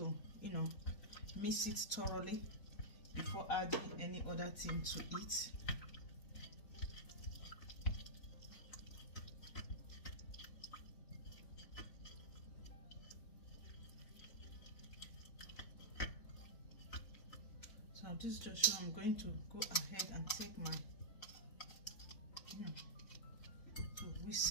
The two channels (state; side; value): late; right; 3.9 ms